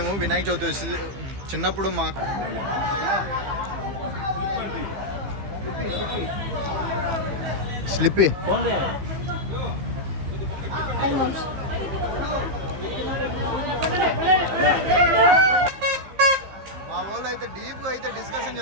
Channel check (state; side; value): late; left; 15 ms